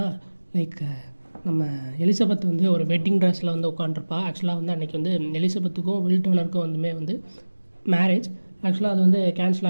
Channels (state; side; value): inverted; both; correlation -1.00